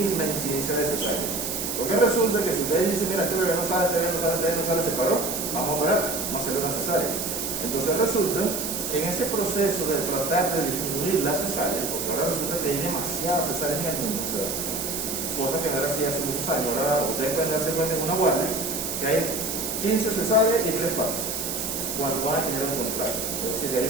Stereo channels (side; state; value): right; noise; hiss, 3 dB below the sound